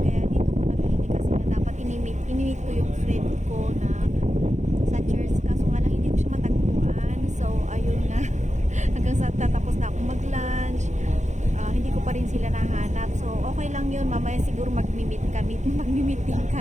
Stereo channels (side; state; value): left; late; 0.34 ms